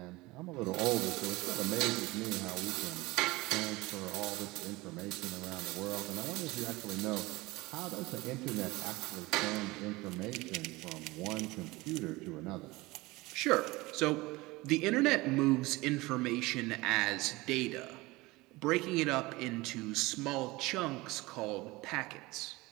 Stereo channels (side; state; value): left; quieter; 21.4 dB